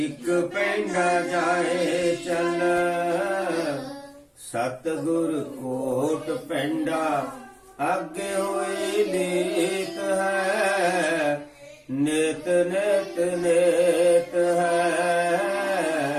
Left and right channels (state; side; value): identical; both; correlation 1.00